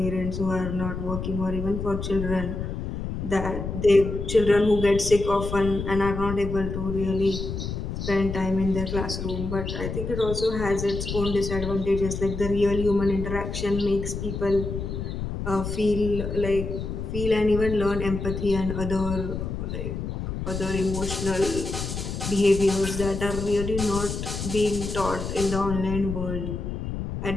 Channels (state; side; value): noise; left; rumble, 5 dB below the sound